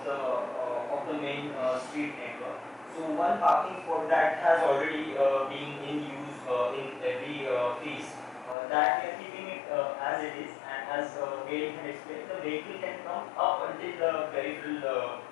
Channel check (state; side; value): drops out; right; at 8.6 s